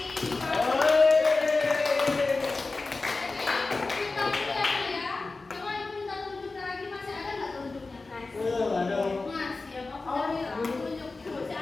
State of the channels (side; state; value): right; quieter; 3.6 dB